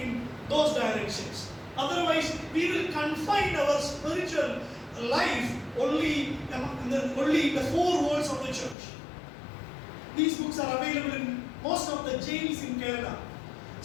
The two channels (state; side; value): drops out; right; at 8.8 s